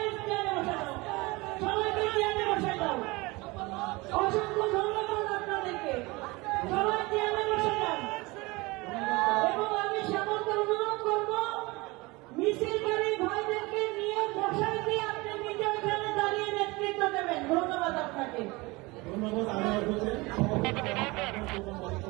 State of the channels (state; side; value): quieter; left; 23.5 dB